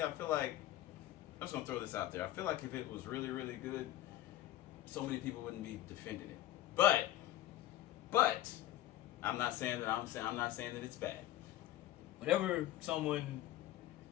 I'm just gonna throw this out there. I feel like if it was really, really good, so many people wouldn't be defending it. But I'm not saying that it's bad. Whenever someone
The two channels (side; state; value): right; quieter; 14.2 dB